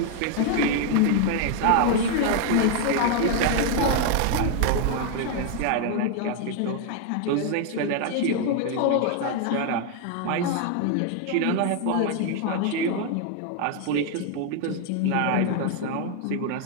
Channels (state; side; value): different; both; correlation 0.00